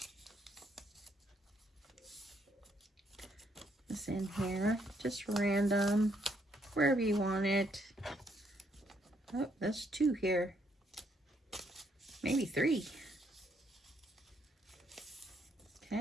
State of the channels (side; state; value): both; normal; correlation 0.72